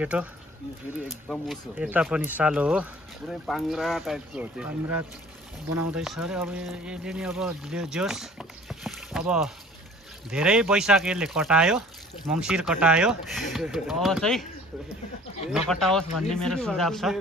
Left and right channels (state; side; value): normal; both; correlation 0.50